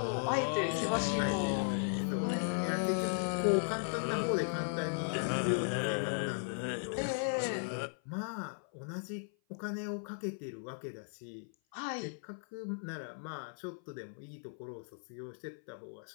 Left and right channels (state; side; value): silent; right; 53 dB below the other